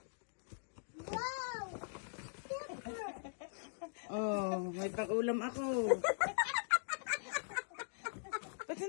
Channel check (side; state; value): right; silent; digital silence